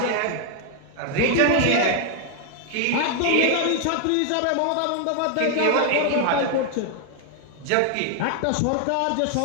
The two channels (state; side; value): different; both; correlation 0.00